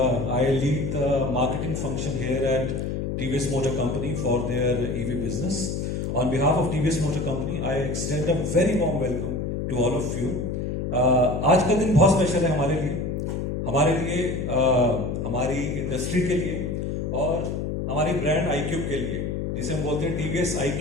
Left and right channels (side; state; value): left; noise; hum, 2 dB below the sound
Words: I lead the marketing function here at TVS Motor Company for their EV business. On behalf of TVS Motor Company, I extend a very warm welcome to all of you. आज का दिन बहुत स्पेशल है हमारे लिए हमारी इंडस्ट्री के लिए और हमारी ब्रांड iQube के लिए, जिसे हम बोलते हैं TVS